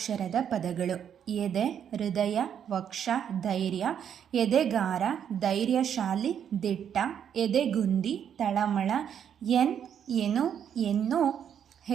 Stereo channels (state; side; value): quieter; left; 8.7 dB